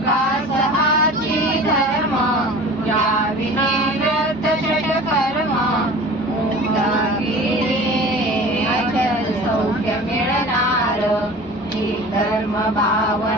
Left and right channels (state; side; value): normal; both; correlation 0.40